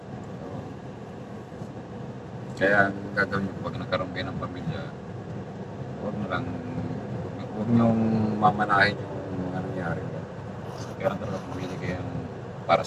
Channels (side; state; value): both; identical; correlation 1.00